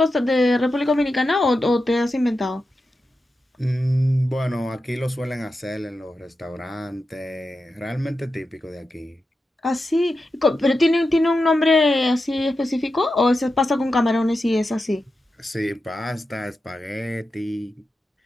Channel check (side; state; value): both; normal; correlation 0.90